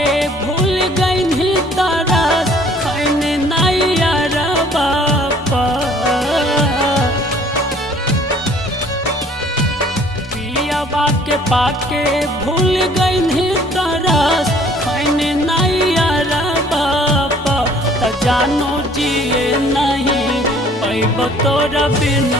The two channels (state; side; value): normal; both; correlation 0.56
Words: भूल गई तारा खैने नैया बापा पिया के पाके भूल गई तारा खैने नैया बापा त जानो जिए नहीं पैब तोरा